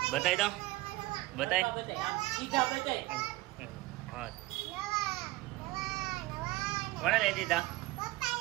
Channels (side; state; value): left; quieter; 19.0 dB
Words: બતાવી દો, બતાય. હા, કોણે લઈ દીધા?